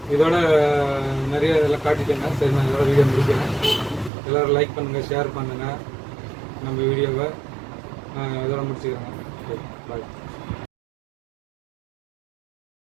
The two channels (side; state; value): left; drops out; at 4.1 s